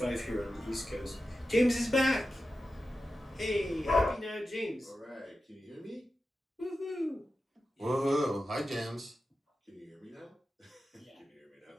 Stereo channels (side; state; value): both; normal; correlation 0.92